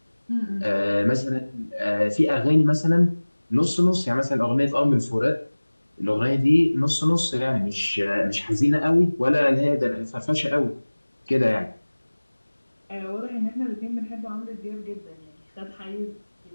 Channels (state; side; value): inverted; both; correlation -1.00